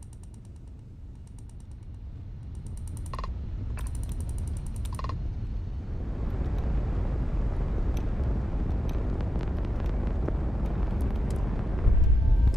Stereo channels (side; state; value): both; normal; correlation 0.90